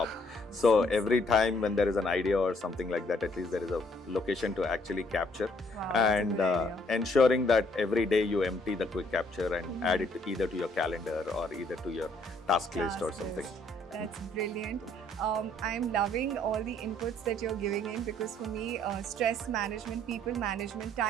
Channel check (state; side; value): normal; both; correlation 0.65